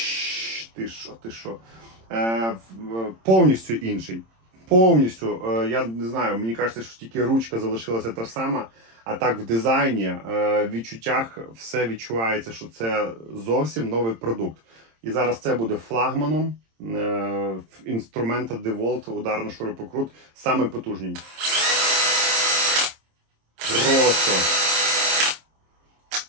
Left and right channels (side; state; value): left; late; 26 ms